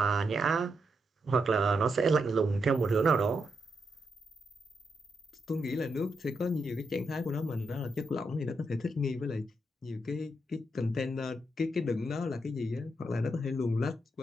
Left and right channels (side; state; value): both; normal; correlation 0.82